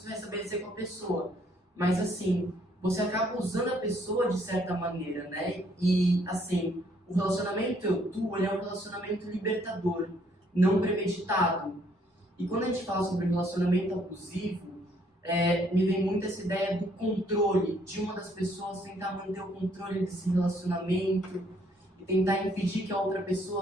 vai estabelecer com a pessoa. Mas assim, você acaba usando a pessoa de certa maneira, né? E assim, o relacionamento eu-tu, ele é um relacionamento libertador, não premeditado. E quando a gente fala sobre relacionamento abusivo, me vem muito essa ideia do controle, de uma das pessoas tentar manter o controle desse relacionamento e tentar impedir que a outra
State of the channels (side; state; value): both; normal; correlation 0.66